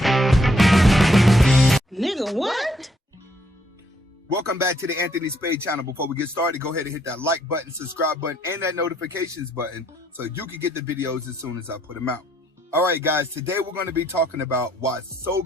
Welcome back to the Anthony Spade channel. Before we get started, go ahead and hit that like button, subscribe button, and that notifications button so you can get the videos as soon as I put them out. All right, guys, today we're going to be talking about why so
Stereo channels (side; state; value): both; normal; correlation 0.70